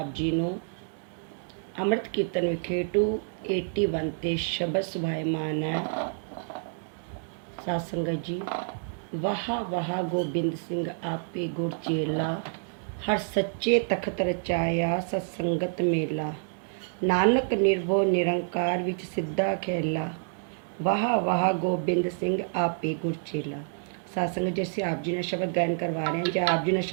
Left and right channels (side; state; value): left; silent; digital silence